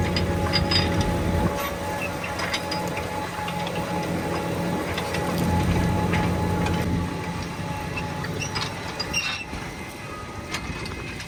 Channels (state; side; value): identical; both; correlation 1.00